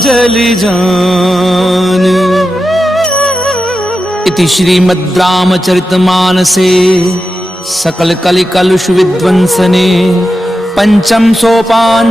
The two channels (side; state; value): both; normal; correlation 0.90